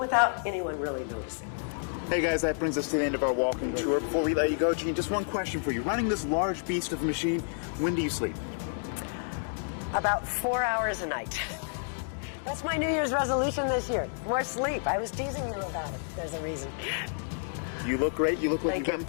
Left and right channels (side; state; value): right; silent; digital silence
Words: anyone really noticing. Hey guys, that brings us to the end of our walking tour. Before we let you go, Jean, just one question for you. Running this large beast of a machine, when do you sleep? About 4 hours a night. That's my New Year's resolution this year. More sleep. I was teasing you about it. There's a reason. You look great. You look like Thank you've you.